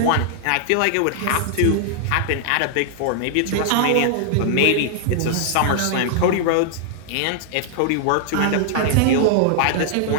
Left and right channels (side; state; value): both; different; correlation -0.01